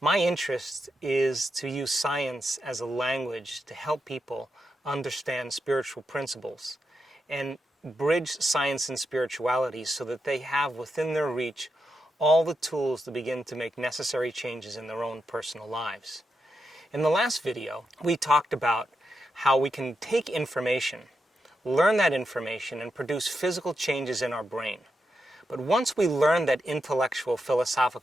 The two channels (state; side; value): normal; both; correlation 0.86